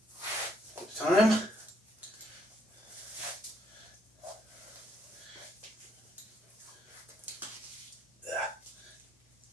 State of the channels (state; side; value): normal; both; correlation 0.71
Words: at a time?